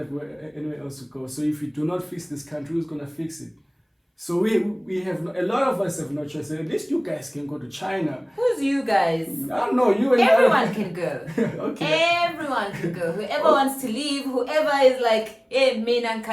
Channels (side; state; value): both; identical; correlation 1.00